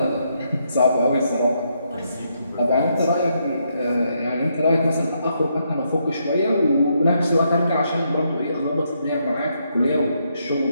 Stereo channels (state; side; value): inverted; both; correlation -0.77